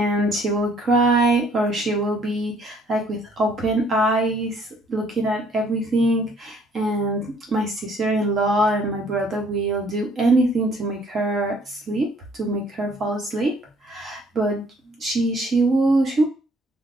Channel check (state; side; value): normal; both; correlation 0.61